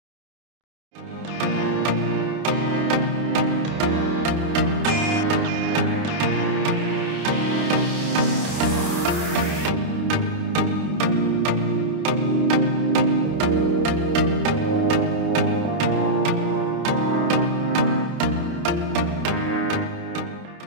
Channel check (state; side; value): late; left; 29 ms